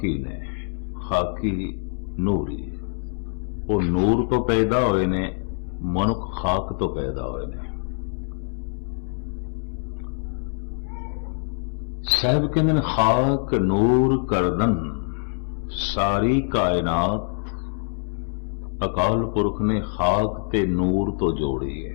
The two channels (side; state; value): right; silent; 62 dB below the other